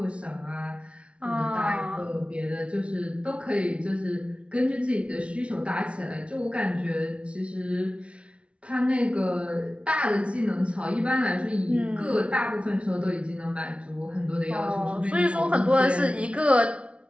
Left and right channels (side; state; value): left; late; 0.061 ms